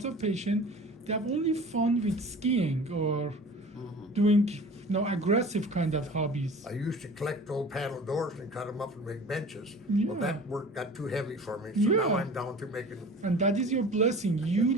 of patients, they have only fun with skiing or doing aggressive kind of hobbies. I used to collect old paddle doors and cut them up and make benches. Yeah. Well, that work got too heavy for me, so now Yeah. I'm down to making. And that is your blessing. You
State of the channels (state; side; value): normal; both; correlation 0.41